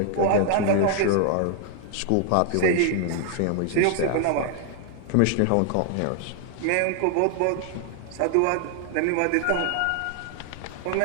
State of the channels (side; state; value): both; different; correlation 0.00